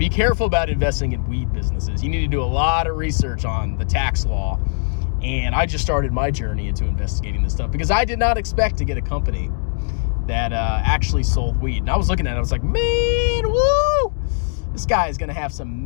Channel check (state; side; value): silent; right; digital silence